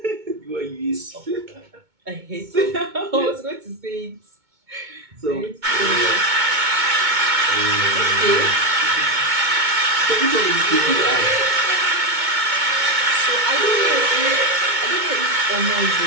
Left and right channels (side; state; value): left; late; 2.2 ms